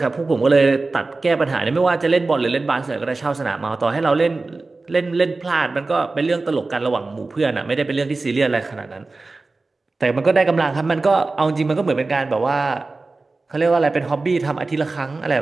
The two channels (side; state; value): left; quieter; 3.5 dB